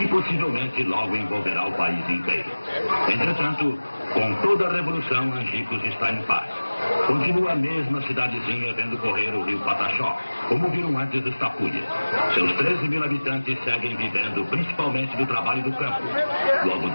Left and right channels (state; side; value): inverted; both; correlation -1.00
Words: possivelmente logo envolverá o país inteiro. Entretanto, com toda a revolução, Angicos está em paz. Continua a mesma cidadezinha vendo correr o rio Pataxó, como viram antes dos Tapuia. Seus 13 mil habitantes seguem vivendo principalmente do trabalho do campo, do